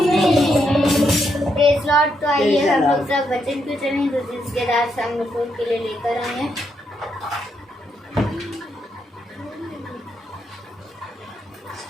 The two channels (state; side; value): normal; both; correlation 0.79